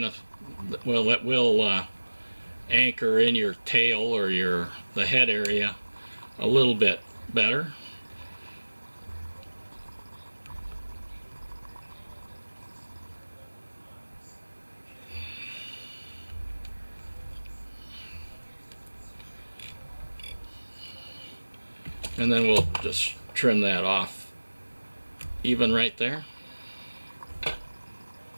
of, well, it will anchor in your tail or the head area a little bit better. And then we'll just trim that off even right there.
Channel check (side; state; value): both; inverted; correlation -1.00